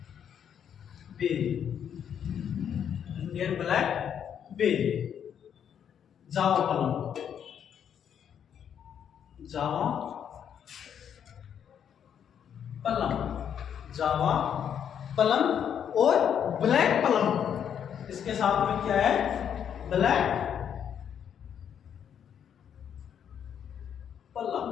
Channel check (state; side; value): quieter; right; 8.6 dB